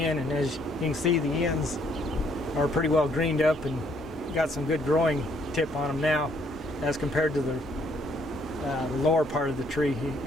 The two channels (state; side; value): normal; both; correlation 0.67